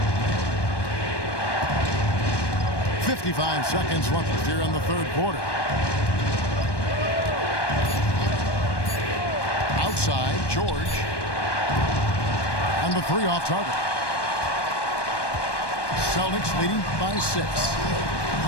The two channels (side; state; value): right; late; 1.2 ms